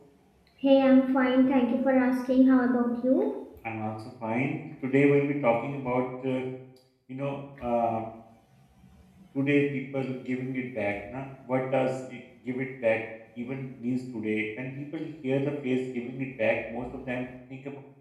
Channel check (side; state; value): both; identical; correlation 1.00